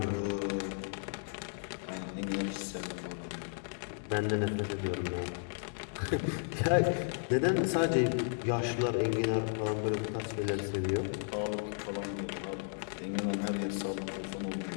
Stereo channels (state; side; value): silent; right; 55 dB below the other